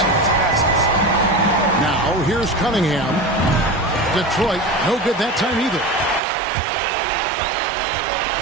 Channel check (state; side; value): drops out; left; at 6.2 s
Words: chance passes. Now, here's Cunningham. Detroit, no good that time either.